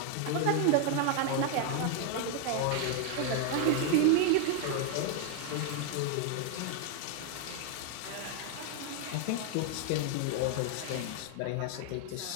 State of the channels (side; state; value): both; different; correlation 0.00